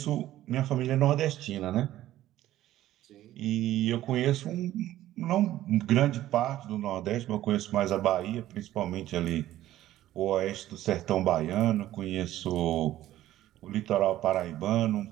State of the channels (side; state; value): left; quieter; 14.0 dB